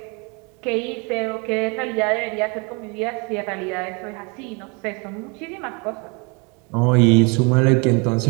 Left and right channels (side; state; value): left; quieter; 31.3 dB